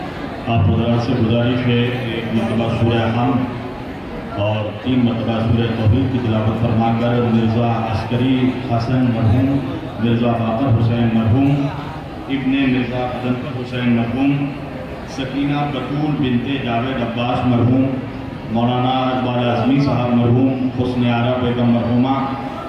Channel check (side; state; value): both; identical; correlation 1.00